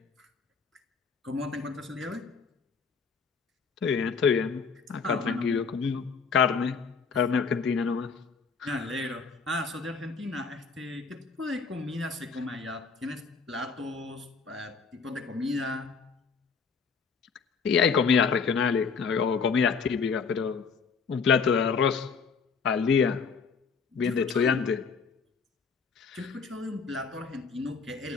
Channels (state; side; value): quieter; right; 5.4 dB